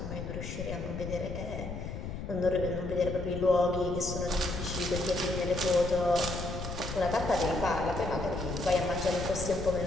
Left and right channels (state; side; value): noise; left; rumble, 6 dB below the sound